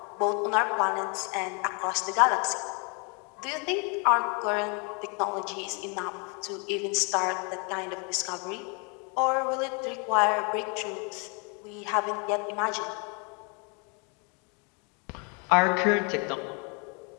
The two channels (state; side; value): quieter; right; 34.5 dB